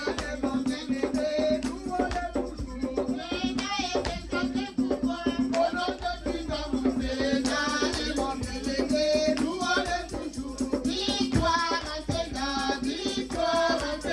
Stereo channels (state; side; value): identical; both; correlation 1.00